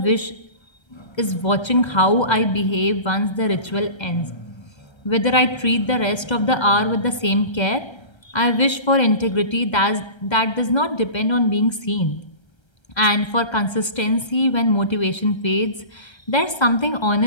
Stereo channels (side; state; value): right; late; 1.3 ms